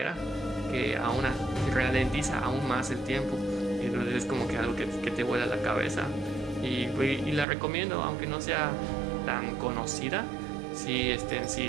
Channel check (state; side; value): drops out; left; at 7.5 s